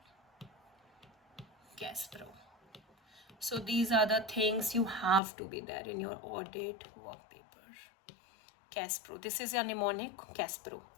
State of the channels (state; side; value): drops out; right; at 5.2 s